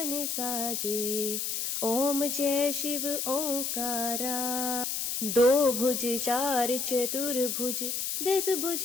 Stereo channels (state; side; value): noise; left; hiss, 2 dB below the sound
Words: साजे। ओम जय शिव ओंकारा। दो भुज चार चतुर्भुज, 10